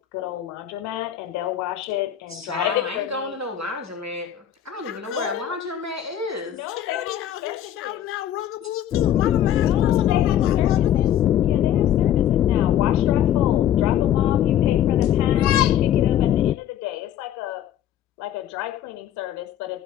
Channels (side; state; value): right; quieter; 11.0 dB